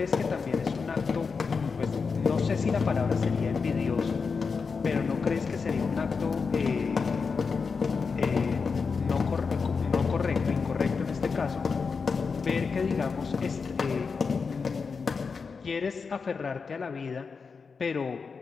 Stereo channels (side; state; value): right; quieter; 5.2 dB